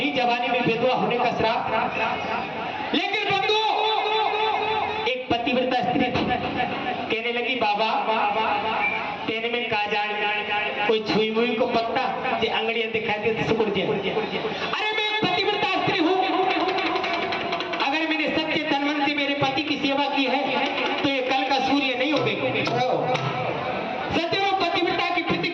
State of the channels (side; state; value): both; identical; correlation 1.00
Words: जवानी में विधवा होने का श्राप। लेकिन बंधुओं एक पतिव्रता स्त्री थी, कहने लगी, बाबा तेने में का जान, कोई छुई मुई को पत्ता जे अंगड़ियां दिखाई दे सुकुड़ जाए। अरे मैं एक पतिव्रता स्त्री हूँ, अगर मैंने सच्चे तन मन से मेरे पति की सेवा की है तो ये कल का सूर्य नहीं उगेगा। सदैव पतिव्रता की